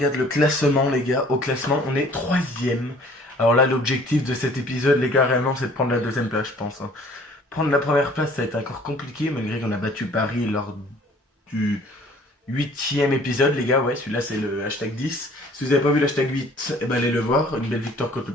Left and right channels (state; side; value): normal; both; correlation 0.54